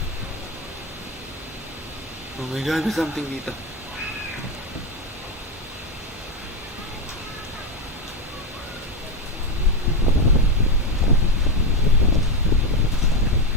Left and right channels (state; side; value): normal; both; correlation 0.11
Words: Oh my god, there's something dito.